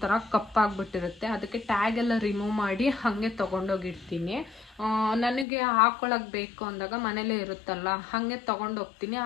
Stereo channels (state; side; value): drops out; right; at 5.5 s